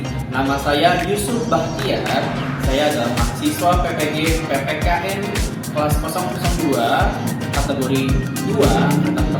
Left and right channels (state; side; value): identical; both; correlation 1.00